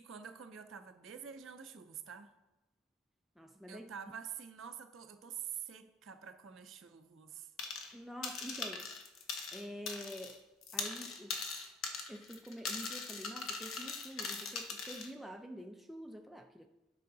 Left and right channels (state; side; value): normal; both; correlation 0.49